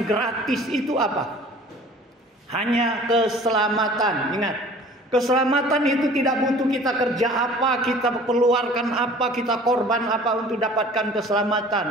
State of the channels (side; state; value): both; normal; correlation 0.47